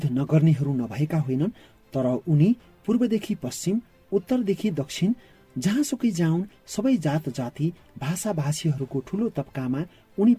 नगर्नेहरू नभएका होइनन्, तर उनी पूर्वदेखि पश्चिम, उत्तरदेखि दक्षिण जहाँसुकै जाउन् सबै जात जाति, भाषा भाषीहरूको ठूलो तबकामा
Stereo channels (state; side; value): identical; both; correlation 1.00